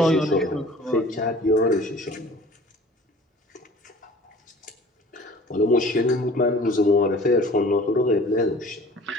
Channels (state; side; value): normal; both; correlation 0.48